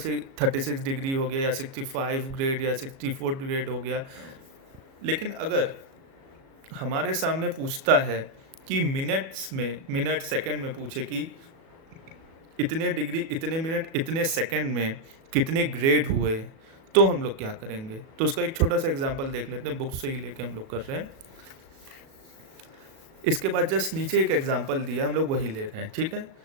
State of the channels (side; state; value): left; late; 37 ms